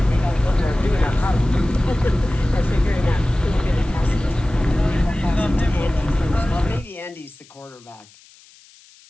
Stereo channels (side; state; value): left; noise; hiss, 26 dB below the sound